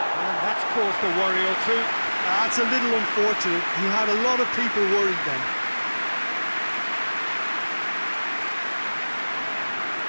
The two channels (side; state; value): both; inverted; correlation -1.00